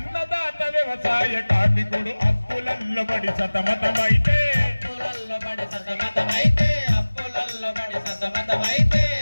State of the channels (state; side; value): inverted; both; correlation -1.00